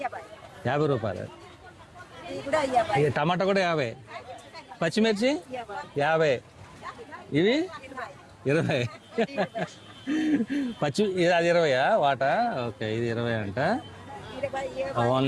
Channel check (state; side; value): identical; both; correlation 1.00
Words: 50 రూపాయలు. టమాటా కూడా 50. పచ్చిమిర్చి 50. ఇవి 20. అది 20యా వాటా? ఓకే, ఇది 20 అంట.